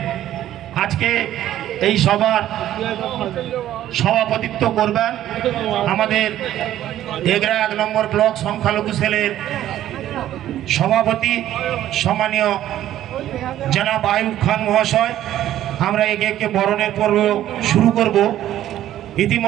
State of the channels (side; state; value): left; quieter; 12.6 dB